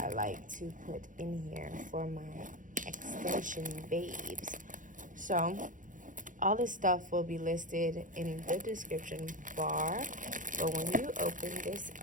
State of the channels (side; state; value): left; late; 0.38 ms